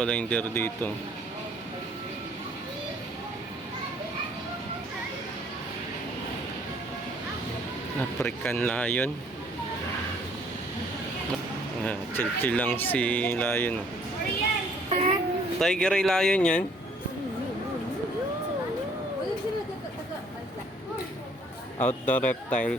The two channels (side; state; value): both; normal; correlation 0.61